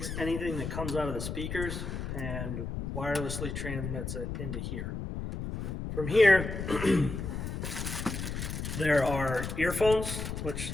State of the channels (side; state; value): left; noise; rumble, 5 dB below the sound